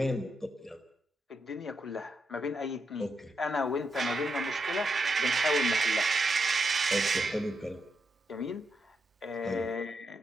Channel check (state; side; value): normal; both; correlation 0.83